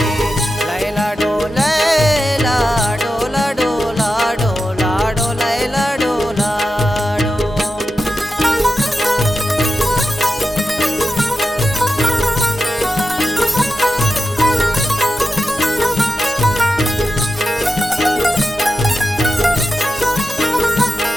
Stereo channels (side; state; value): both; normal; correlation 0.91